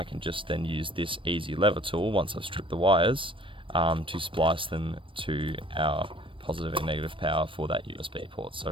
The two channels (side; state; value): left; late; 0.25 ms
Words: can just then use this easy lever tool once I've stripped the wires to splice them to our positive and negative power for that USB port. So